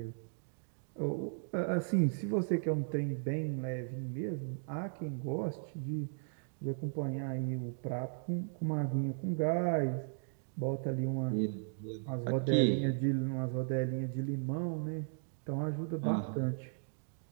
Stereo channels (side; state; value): left; silent; digital silence